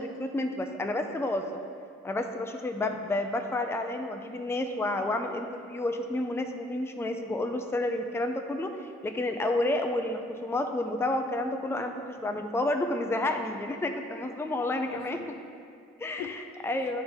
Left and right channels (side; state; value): both; normal; correlation 0.63